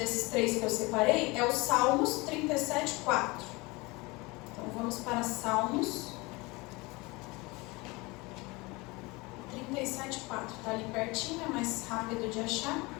3 que eu separei é o Salmos 37:4. Então vamos para Salmos 37:4. Está ali pertinho, é mais rápido de achar.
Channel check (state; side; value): quieter; right; 24.3 dB